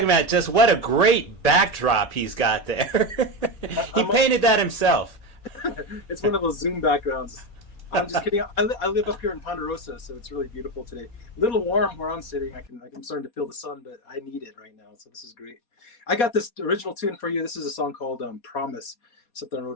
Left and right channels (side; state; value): right; late; 4.2 ms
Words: about just what a great backdrop he's got there. He painted that himself. It's one of those Zoom backgrounds. I'm just kidding. I live up here in Ponderosa, so it's really beautiful today. A little warm where I'm sitting. I'm starting to feel the sun, but I need it right now, so this is great. I got this original tune for you. This is a song called Promise, something I